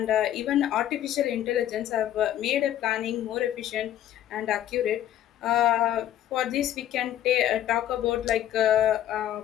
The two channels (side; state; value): right; quieter; 11.8 dB